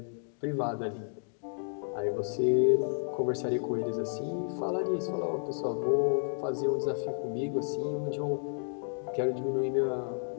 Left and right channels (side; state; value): right; silent; 57 dB below the other